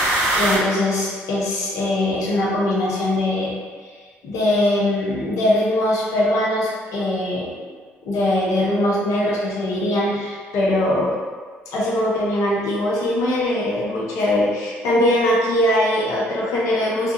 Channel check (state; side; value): normal; both; correlation 0.64